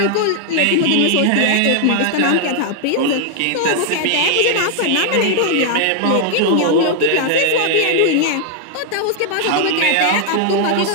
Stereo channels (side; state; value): both; different; correlation 0.00